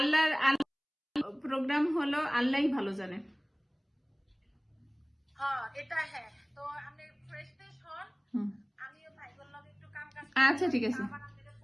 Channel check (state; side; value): identical; both; correlation 1.00